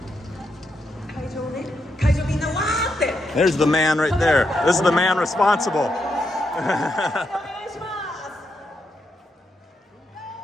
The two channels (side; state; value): both; normal; correlation 0.82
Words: There's the man right there. This is the man responsible.